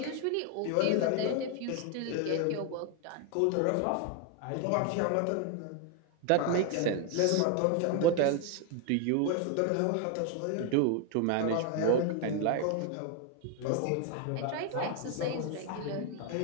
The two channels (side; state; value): both; different; correlation 0.01